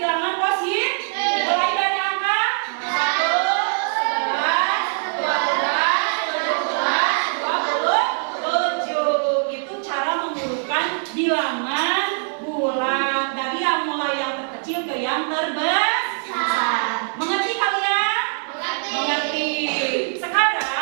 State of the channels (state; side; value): silent; left; 64 dB below the other